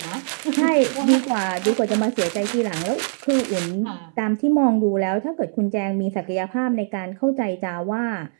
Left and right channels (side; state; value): left; silent; 64 dB below the other